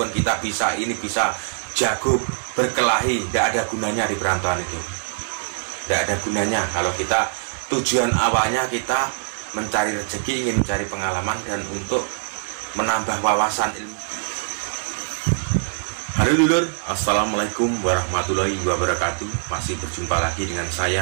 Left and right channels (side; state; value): left; silent; digital silence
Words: kita bisa ini bisa jago berkelahi, nggak ada gunanya di perantauan itu. Nggak ada gunanya kalau kita tujuan awalnya kita mencari rezeki, ingin mencari pengalaman dan untuk menambah wawasan ilmu. Halo dulur, assalamualaikum warahmatullahi wabarakatuh. Masih berjumpa lagi dengan